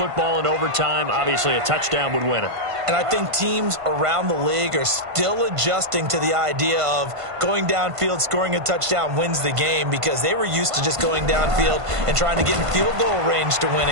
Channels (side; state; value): left; late; 1.5 ms